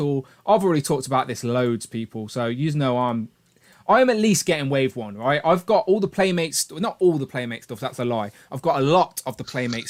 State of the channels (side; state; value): both; identical; correlation 1.00